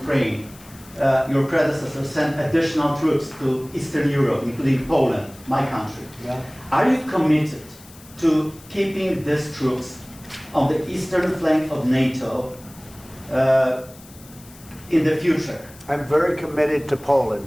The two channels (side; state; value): left; noise; hiss, 22 dB below the sound